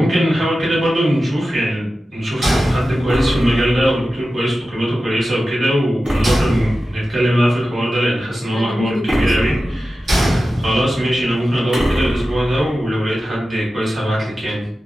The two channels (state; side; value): normal; both; correlation 0.93